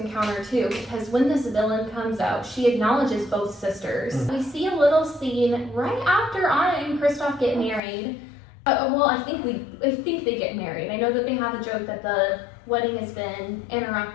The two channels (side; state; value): right; drops out; at 7.8 s